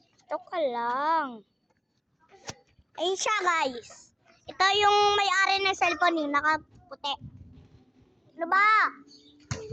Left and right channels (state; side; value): identical; both; correlation 1.00